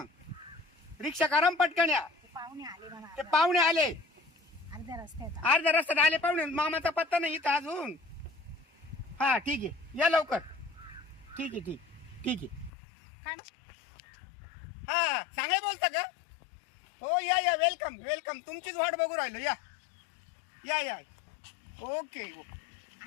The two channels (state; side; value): drops out; right; at 12.7 s